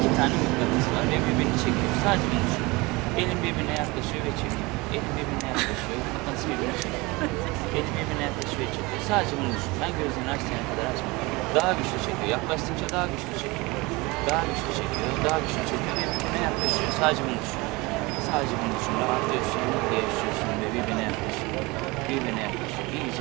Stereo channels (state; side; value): quieter; left; 24.0 dB